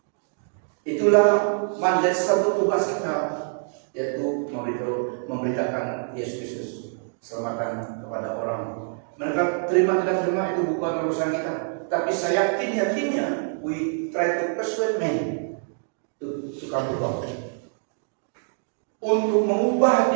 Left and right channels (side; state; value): left; silent; 62 dB below the other